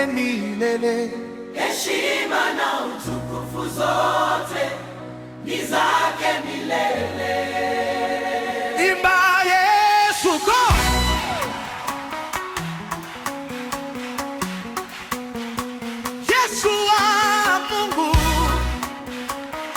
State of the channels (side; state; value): both; identical; correlation 1.00